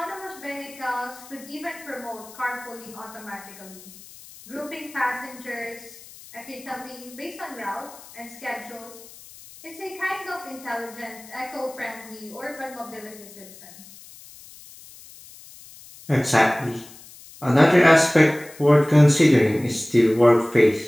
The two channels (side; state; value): left; noise; hiss, 20 dB below the sound